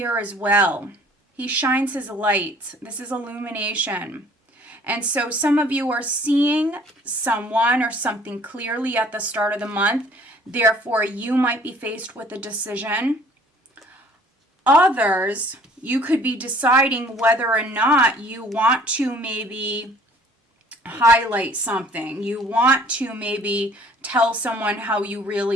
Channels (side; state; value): both; normal; correlation 0.55